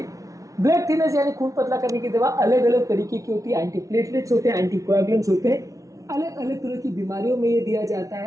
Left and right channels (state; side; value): late; left; 0.17 ms